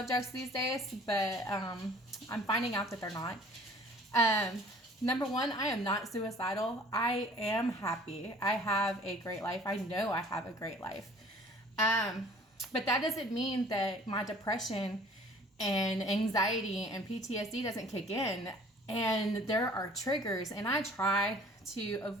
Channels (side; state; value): both; normal; correlation 0.50